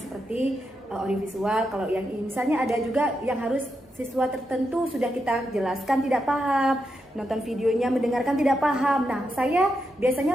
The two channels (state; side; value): normal; both; correlation 0.85